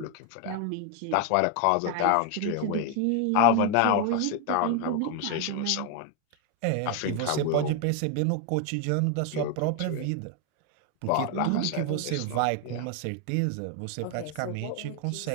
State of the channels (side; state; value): both; different; correlation 0.01